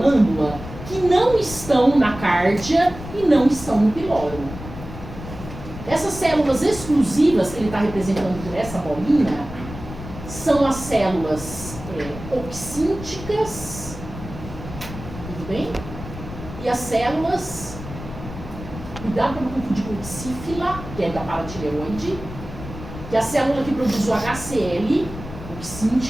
que não estão na cárdia e não estão no piloro. Essas células exclusivas que ele está representando por essa bolinha são as células oxínticas, tudo bem? E as células, cuidado para não confundir com oxífila, que é da paratireoide, que é a célula que produz o HCl,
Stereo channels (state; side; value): noise; left; rumble, 12 dB below the sound